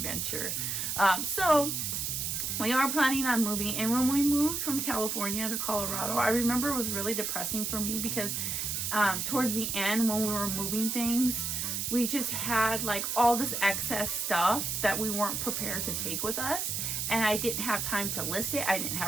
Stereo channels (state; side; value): noise; right; hiss, 1 dB below the sound